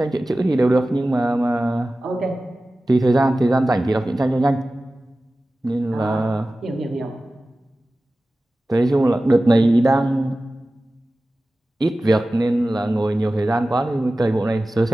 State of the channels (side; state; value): both; normal; correlation 0.96